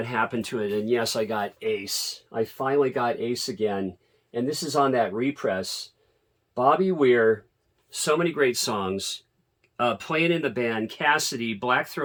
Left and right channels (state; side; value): identical; both; correlation 1.00